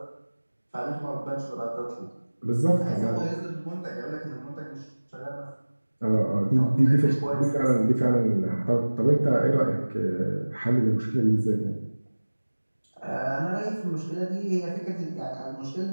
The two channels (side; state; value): both; inverted; correlation -1.00